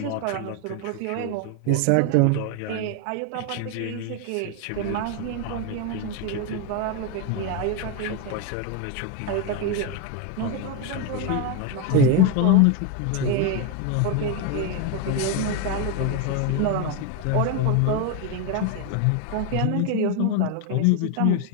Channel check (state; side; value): different; both; correlation 0.02